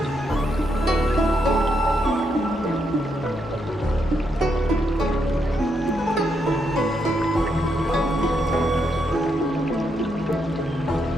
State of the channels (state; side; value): normal; both; correlation 0.79